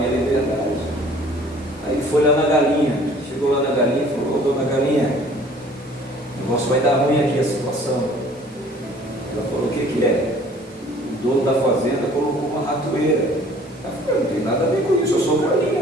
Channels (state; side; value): normal; both; correlation 0.53